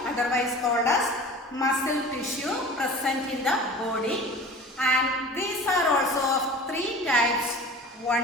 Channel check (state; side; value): normal; both; correlation 0.40